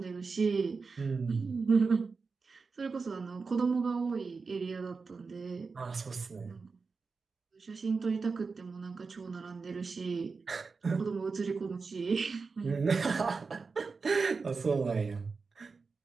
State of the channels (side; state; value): left; quieter; 4.6 dB